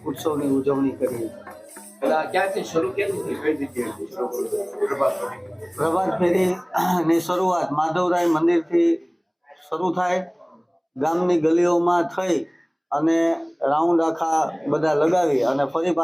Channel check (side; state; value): both; identical; correlation 1.00